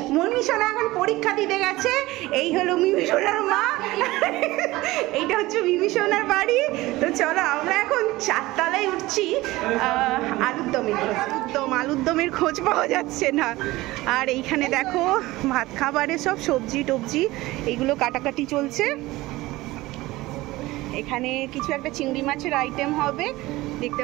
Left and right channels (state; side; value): quieter; left; 19.0 dB